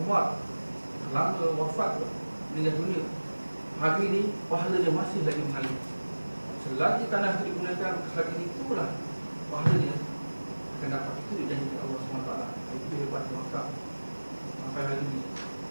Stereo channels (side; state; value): both; inverted; correlation -1.00